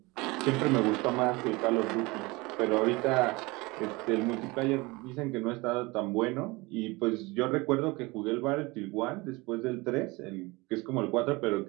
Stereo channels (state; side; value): quieter; left; 23.7 dB